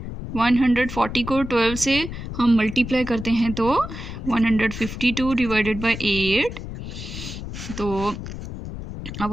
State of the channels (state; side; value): noise; left; rumble, 9 dB below the sound